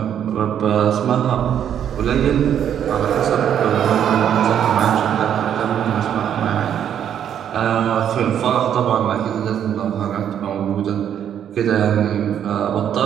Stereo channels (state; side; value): quieter; left; 9.4 dB